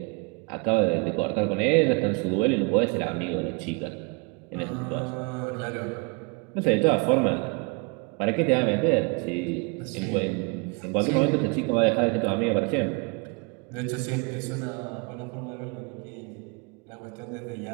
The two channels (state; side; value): quieter; left; 29.9 dB